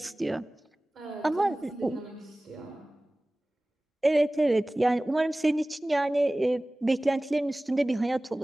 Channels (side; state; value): both; normal; correlation 0.98